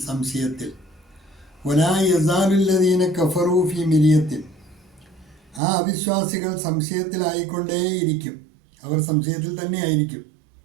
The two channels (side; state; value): left; drops out; at 5.6 s